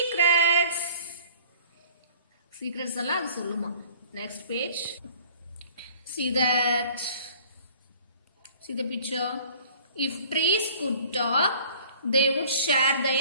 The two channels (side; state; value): both; inverted; correlation -0.51